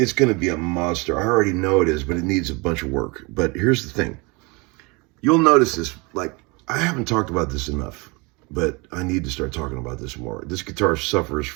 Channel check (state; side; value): quieter; left; 27.7 dB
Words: going to be a monster. I already know it is, but it needs a bunch of work. But here's the thing. You'll notice this, like, I haven't talked about this enough, but I need to start talking about this more. This guitar suffers